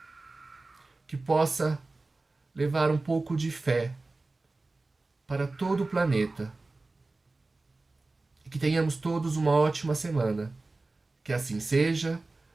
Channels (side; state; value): left; quieter; 3.3 dB